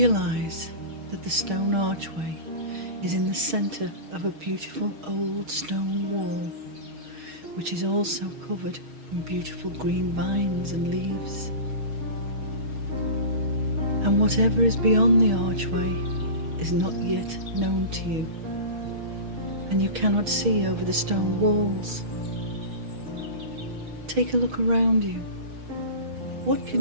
that the stone archway is in the center of a beautiful old stone wall, which is also covered in beautiful green vines and leaves. And whatever is beyond the archway is not yet known to you, and you cannot see over the stone walls. Take a look around you. What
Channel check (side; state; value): left; late; 6.4 ms